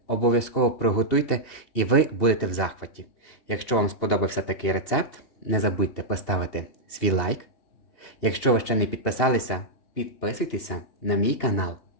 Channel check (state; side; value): late; right; 2.8 ms